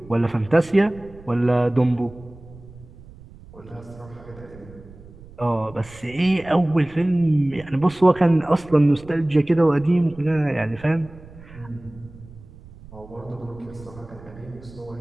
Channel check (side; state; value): right; noise; rumble, 20 dB below the sound